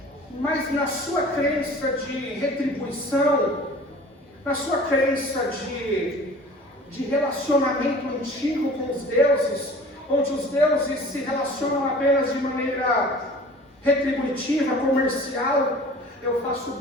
Mas na sua crença de retribuição, na sua crença de relacionamento antigo com os deuses, onde os deuses se relacionam apenas de maneira retributiva, comercial, eu faço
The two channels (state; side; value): normal; both; correlation 0.44